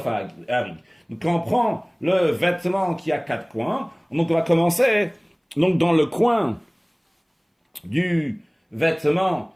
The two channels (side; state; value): both; identical; correlation 1.00